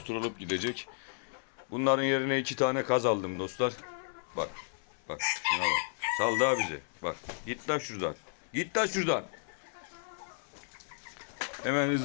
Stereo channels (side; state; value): right; silent; 56 dB below the other